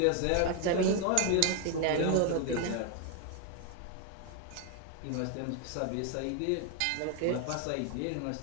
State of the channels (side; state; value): both; different; correlation 0.01